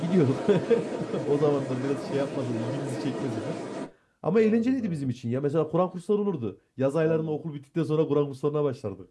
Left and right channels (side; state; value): both; identical; correlation 1.00